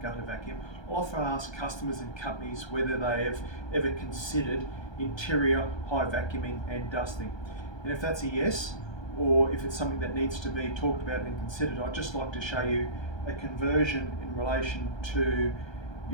gutter vacuum, I often ask customers and companies whether they have ever considered interior high vacuuming and dusting. And if that's a yes, or if it's something that needs to be talked about and considered, I'd just like to show you a conversion in relation to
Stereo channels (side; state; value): right; late; 1.3 ms